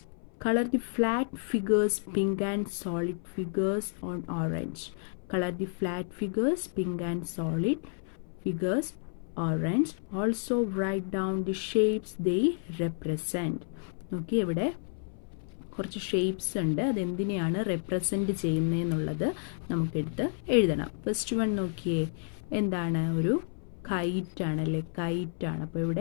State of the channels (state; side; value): silent; right; 57 dB below the other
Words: color the flat figures pink and solid figures on orange. Color the flat figures pink and solid figures orange. Also write down the shapes they represent. Okay, ഇവിടെ കുറച്ച് shapes ഉണ്ട്, അതെന്തിനെയാണ് represent ചെയ്യുന്നതെന്നുള്ളത് നമുക്കെടുത്ത് എഴുതണം. First one നോക്കിയേ, എന്താണ്? ഒരു കൈറ്റാണ് അല്ലേ? കൈറ്റാണ്. അപ്പോൾ